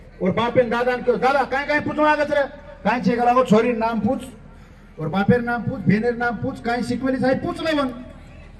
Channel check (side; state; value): both; identical; correlation 1.00